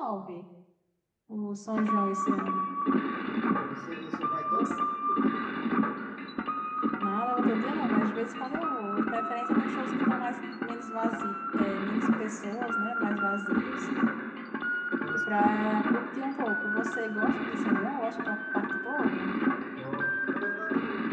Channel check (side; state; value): both; identical; correlation 1.00